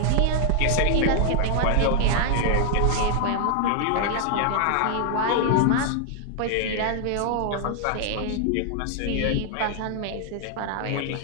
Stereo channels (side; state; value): both; different; correlation 0.00